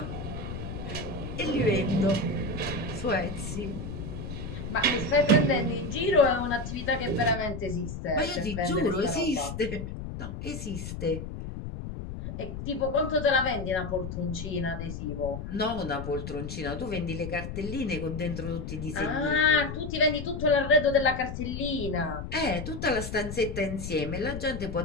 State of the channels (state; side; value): noise; left; rumble, 7 dB below the sound